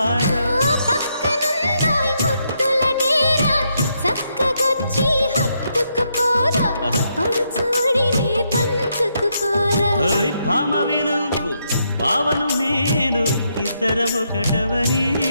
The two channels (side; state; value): both; inverted; correlation -0.78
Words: పక్కనుందోయ్ ముద్దుల డేరా, చక్కగొచ్చి హత్తుకుపోరా, పడుచూడినే పంచుకుపోరా. భామ వినువు భావను నేను, ఇద్దరమొకటవని